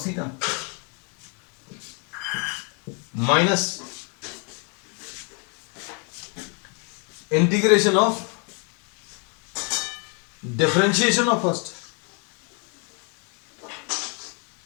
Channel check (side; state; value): right; quieter; 36.4 dB